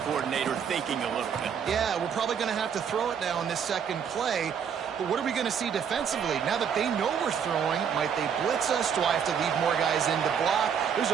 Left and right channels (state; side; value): quieter; left; 7.5 dB